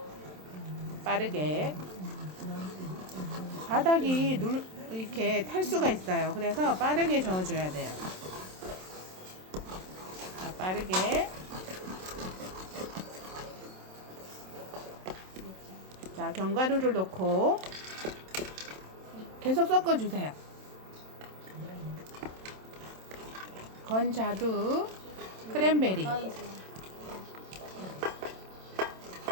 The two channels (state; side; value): late; left; 27 ms